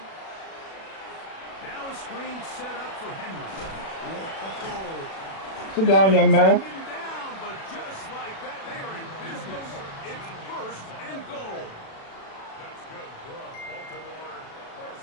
Now a screen set up for Henry. Whoa. Sit down, young man. Taken down, but just like that, they are in business. It's 1st and goal. That's good for a Baltimore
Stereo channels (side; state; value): right; late; 37 ms